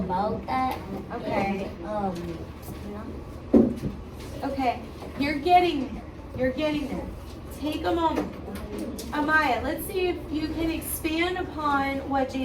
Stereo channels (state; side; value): identical; both; correlation 1.00